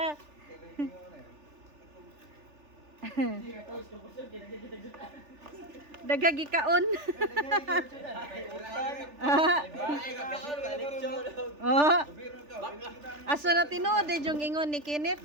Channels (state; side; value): late; left; 3.4 ms